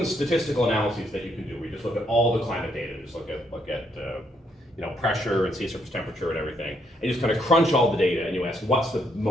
statistical analyses that you can do. We just look at all the climate data, just look at pressure and sea surface temperature and everything, and you just kind of crunch all the data, and you ask what's the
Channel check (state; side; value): normal; both; correlation 0.73